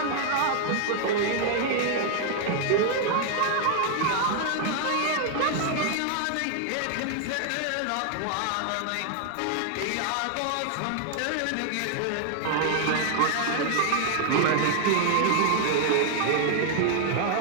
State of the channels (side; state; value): both; different; correlation 0.00